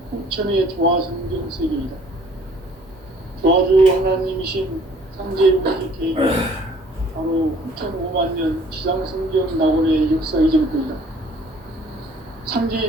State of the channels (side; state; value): both; normal; correlation 0.56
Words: 후천의 조화성경 세계이다. 조화주 하나님이신 상제무시 계획은 바로 후천 5만 년 지상성경 낙원의 역사 이전부이다.